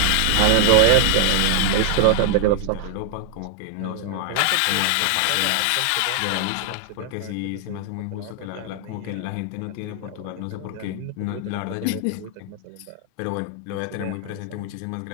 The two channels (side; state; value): both; different; correlation 0.00